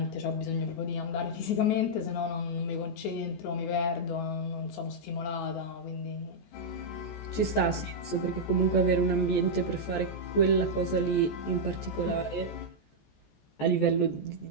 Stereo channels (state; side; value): late; right; 14 ms